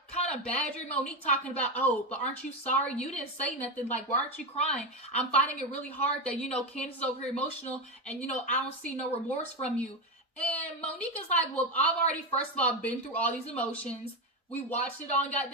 kind of badgering Monique, talking about, oh, but aren't you sorry? You didn't say nothing. Like, why aren't you crying? I'm finding it really hard that, Candace is over here emotional and, I don't see no remorse from you. And Monique is like, well, I've already, first of all, been through all these emotions. We watched it on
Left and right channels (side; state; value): both; normal; correlation 0.13